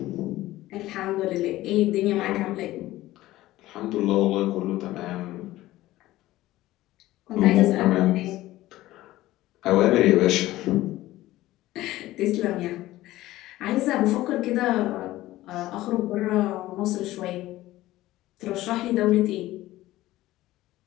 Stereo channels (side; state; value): right; quieter; 16.3 dB